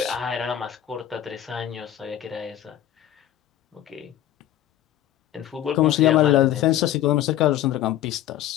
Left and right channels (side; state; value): right; quieter; 12.2 dB